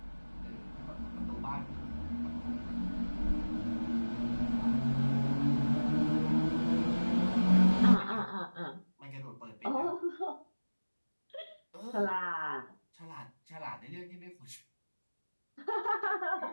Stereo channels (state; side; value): inverted; both; correlation -1.00